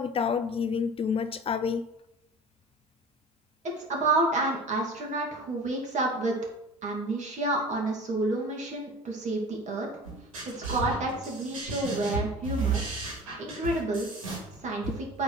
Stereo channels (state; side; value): normal; both; correlation 0.39